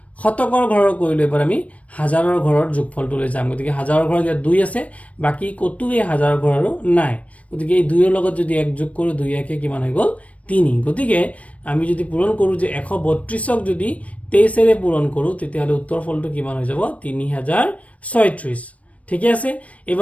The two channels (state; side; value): late; right; 0.066 ms